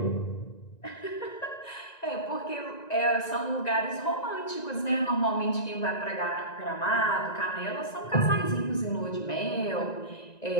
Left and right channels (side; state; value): right; late; 1.9 ms